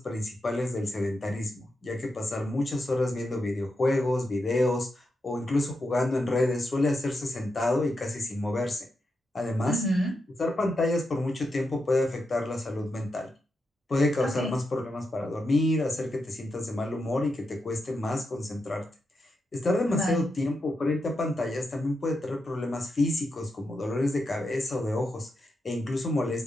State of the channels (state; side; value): normal; both; correlation 0.86